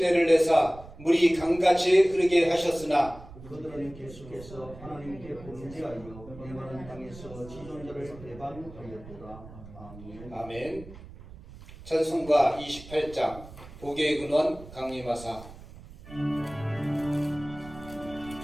내사 물이 강같이 흐르게 하셨으나 그들은 계속해서 하나님께 범죄하여 메마른 땅에서 지존자를 배반하였도다. 아멘. 아멘. 찬송가 28장 복의 근원 강림하사.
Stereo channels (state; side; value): noise; right; rumble, 17 dB below the sound